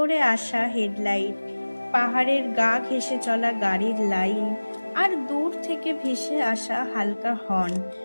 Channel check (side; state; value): both; inverted; correlation -1.00